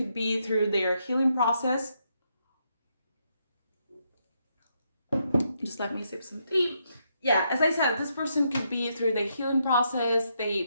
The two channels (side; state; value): both; inverted; correlation -0.78